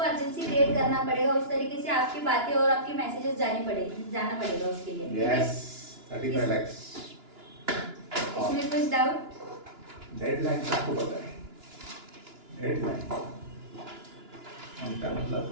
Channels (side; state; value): left; late; 2.9 ms